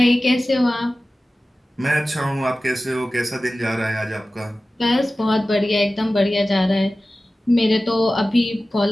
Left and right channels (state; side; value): normal; both; correlation 0.96